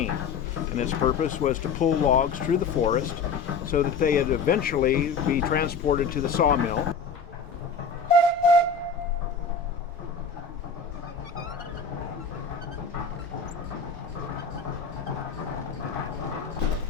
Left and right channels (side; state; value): right; quieter; 5.2 dB